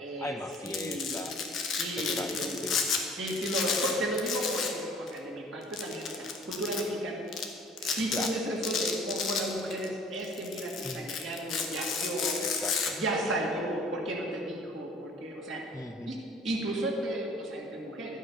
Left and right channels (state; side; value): normal; both; correlation 0.51